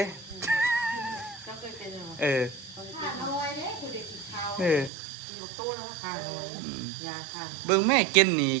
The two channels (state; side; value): drops out; left; at 4.9 s